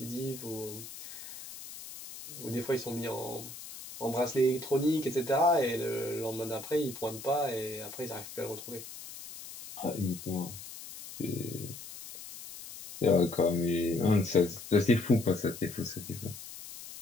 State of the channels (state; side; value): noise; left; hiss, 13 dB below the sound